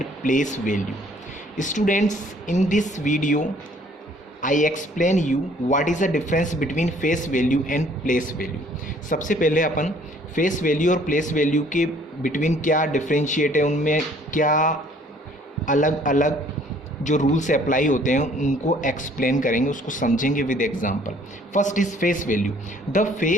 place value. Students, in this video I explain you what is the difference between face value and place value. सबसे पहले अपन face value और place value के between क्या differentiate है, उनमें क्या अलग अलग जो रूल्स अप्लाई होते हैं उनको एक्सप्लेन करेंगे, उसको समझेंगे with example. First is face value. The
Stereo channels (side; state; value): both; normal; correlation 0.59